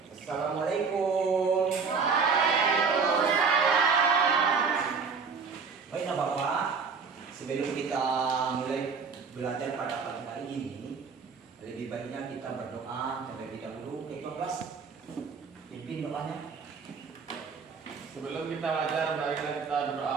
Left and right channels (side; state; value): left; quieter; 5.4 dB